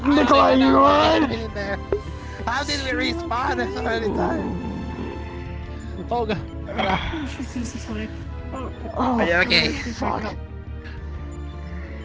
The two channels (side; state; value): both; identical; correlation 1.00